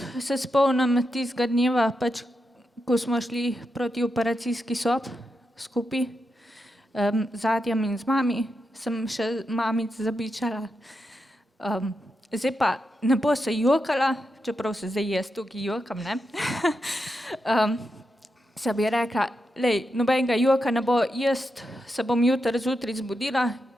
se spomnim tistega dneva, pač, ko smo šli proti operacijski sob skupaj, z Adjem in z mami, sem še mamic zabičala. Zdaj pa ne bo se jokala, čeprav se zdaj jaz tukaj jokam, ne. Se bi rekla, lej, nobenega joka ne bo, jaz se bom jutri zjutraj zbudila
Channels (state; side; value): normal; both; correlation 0.86